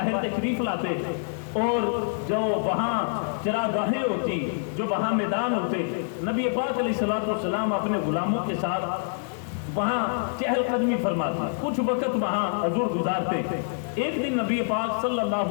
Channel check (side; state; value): right; silent; digital silence